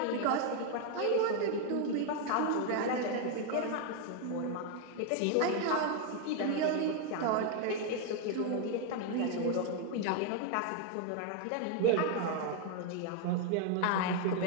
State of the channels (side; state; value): both; different; correlation 0.01